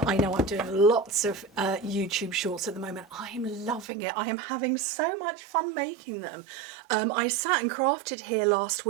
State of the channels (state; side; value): drops out; left; at 3.9 s